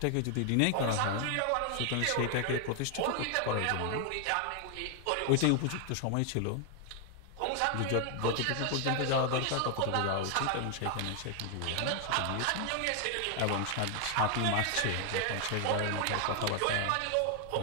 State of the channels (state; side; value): different; both; correlation 0.00